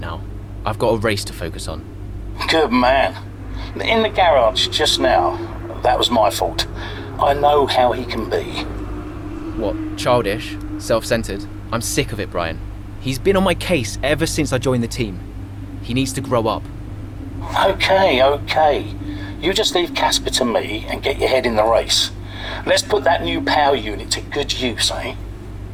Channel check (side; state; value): both; identical; correlation 1.00